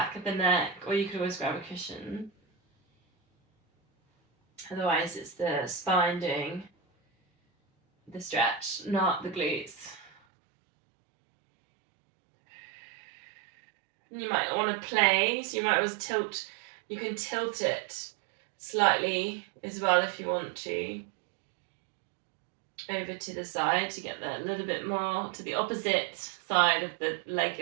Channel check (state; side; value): drops out; left; at 10.1 s